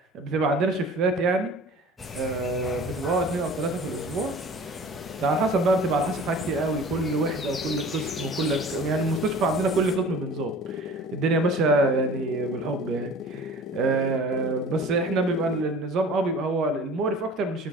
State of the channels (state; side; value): normal; both; correlation 0.43